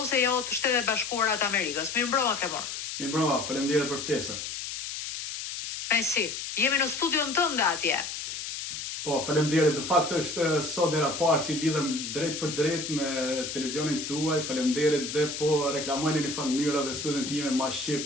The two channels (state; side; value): noise; left; hiss, 6 dB below the sound